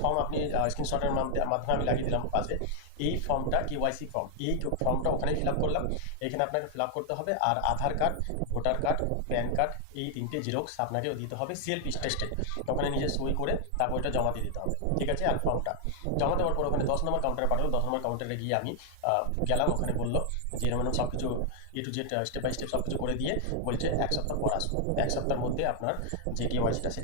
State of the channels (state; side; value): different; both; correlation 0.00